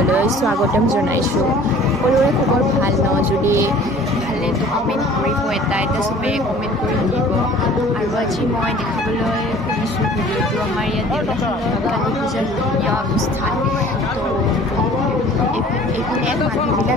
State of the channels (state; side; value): normal; both; correlation 0.49